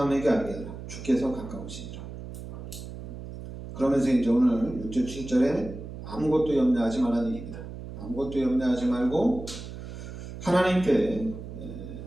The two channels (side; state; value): right; noise; hum, 11 dB below the sound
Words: 알게 하라. 주께서 가까우시니라. 그러면서 이제 오늘 6절 7절에 아무것도 염려하지 말라는 얘기입니다. 아무것도 염려하지 말고 하나님께